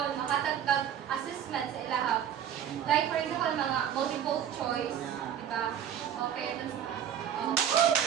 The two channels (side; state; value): left; quieter; 9.4 dB